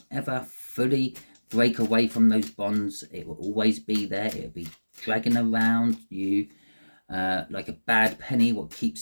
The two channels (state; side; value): inverted; both; correlation -1.00